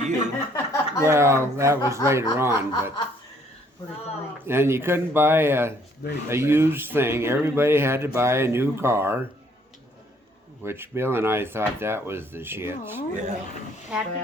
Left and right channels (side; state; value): both; normal; correlation 0.64